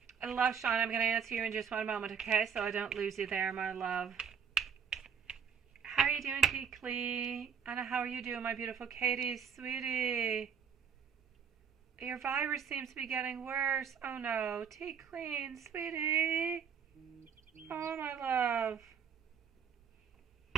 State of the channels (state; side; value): quieter; left; 7.2 dB